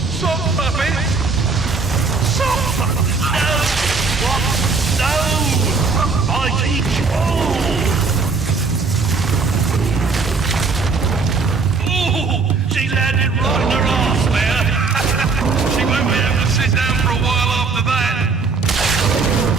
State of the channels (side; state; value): left; quieter; 4.4 dB